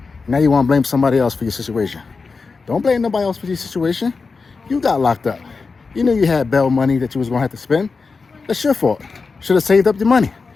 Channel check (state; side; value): quieter; right; 4.5 dB